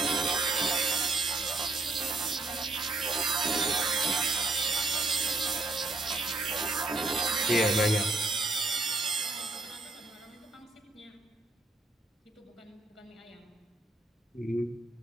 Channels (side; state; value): left; quieter; 3.1 dB